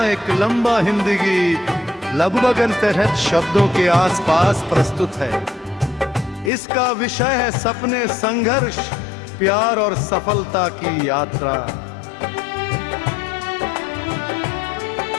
एक लंबा हिंदी गीत लगभग अनतहत शब्दों के आसपास प्रस्तुत है। इसका विषय है सपने, संघर्ष, प्यार और सफलता की यात्रा।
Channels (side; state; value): right; drops out; at 6.5 s